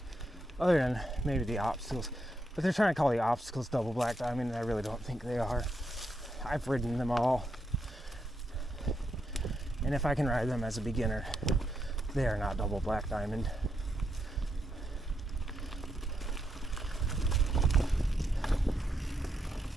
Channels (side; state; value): both; normal; correlation 0.81